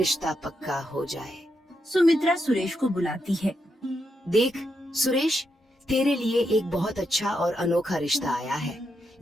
पक्का हो जाए। सुमित्रा सुरेश को बुलाती है। देख सुरेश, तेरे लिए एक बहुत अच्छा और अनोखा रिश्ता आया है,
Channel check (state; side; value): normal; both; correlation 0.83